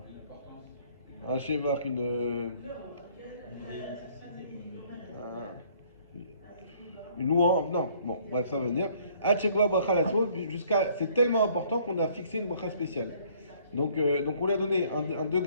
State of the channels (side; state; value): both; inverted; correlation -0.60